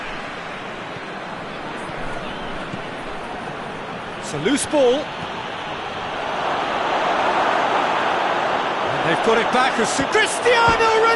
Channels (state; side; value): identical; both; correlation 1.00